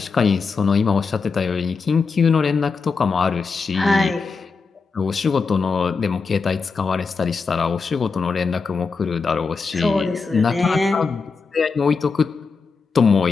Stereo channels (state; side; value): quieter; right; 4.8 dB